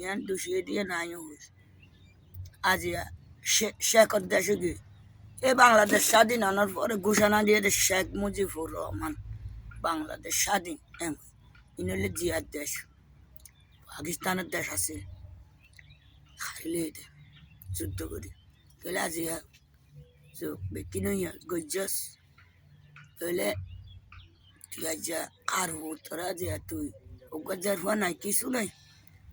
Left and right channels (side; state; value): both; identical; correlation 1.00